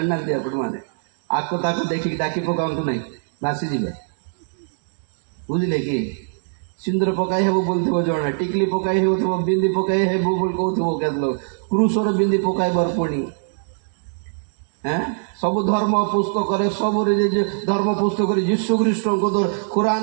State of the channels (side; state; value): left; silent; digital silence